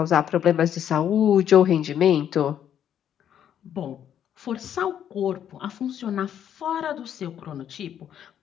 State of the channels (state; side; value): quieter; right; 9.6 dB